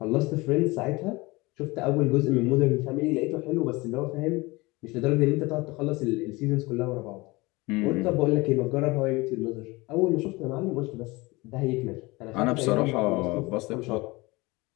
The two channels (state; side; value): quieter; right; 23.1 dB